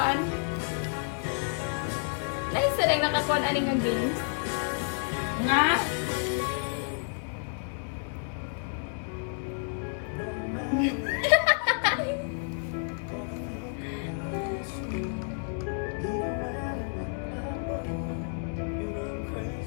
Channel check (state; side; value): silent; right; 58 dB below the other